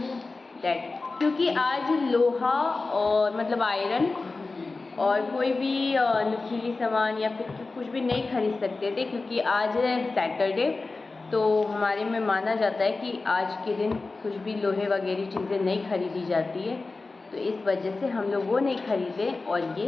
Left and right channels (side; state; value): right; quieter; 3.7 dB